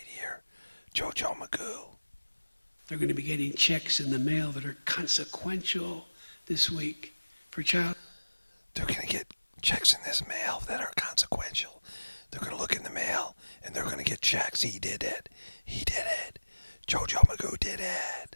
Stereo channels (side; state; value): both; inverted; correlation -1.00